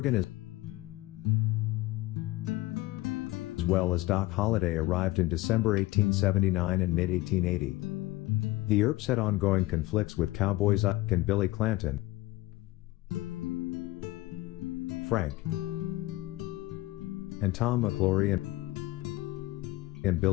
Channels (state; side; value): quieter; right; 17.9 dB